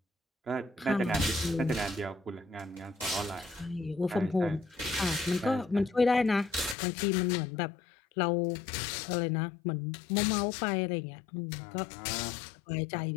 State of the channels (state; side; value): drops out; right; at 6.8 s